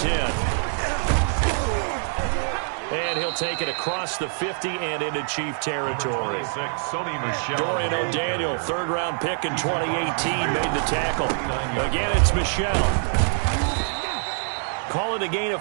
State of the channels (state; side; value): silent; left; digital silence